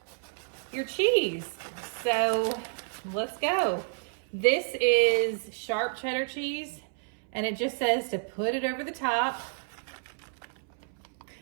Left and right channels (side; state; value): left; silent; 58 dB below the other